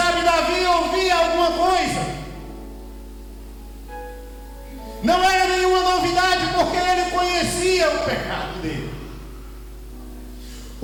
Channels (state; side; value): identical; both; correlation 1.00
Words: Davi ouvia alguma coisa. Não era nenhuma novidade, porque ele conhecia o pecado dele.